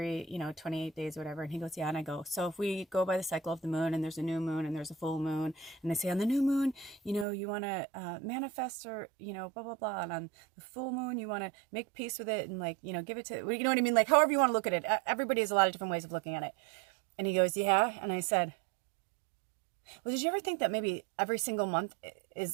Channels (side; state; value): left; drops out; at 7.2 s